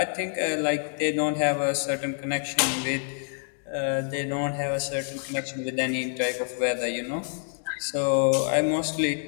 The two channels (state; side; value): silent; right; digital silence